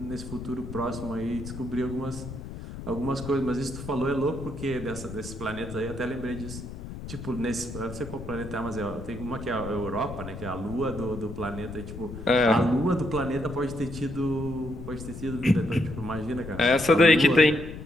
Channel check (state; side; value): noise; left; rumble, 10 dB below the sound